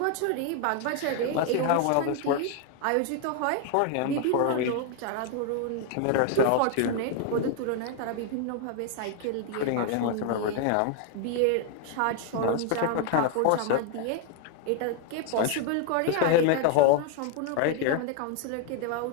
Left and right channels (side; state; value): both; different; correlation 0.00